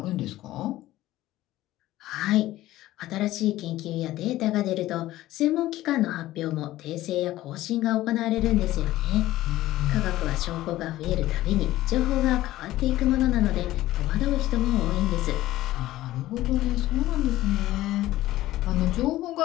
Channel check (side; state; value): right; quieter; 15.6 dB